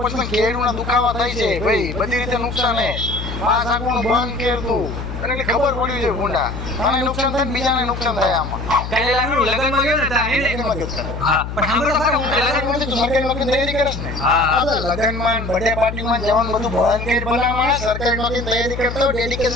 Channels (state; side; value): noise; left; hum, 7 dB below the sound